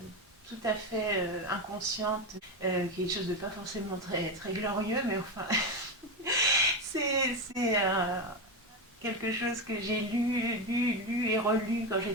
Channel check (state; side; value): normal; both; correlation 0.14